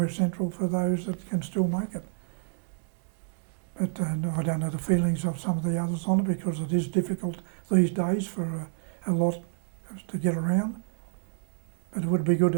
central for those that can still make it. But I don't know the feelings of some of the others on it, because it is difficult these days for a lot to get around. But it would be good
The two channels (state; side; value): silent; left; digital silence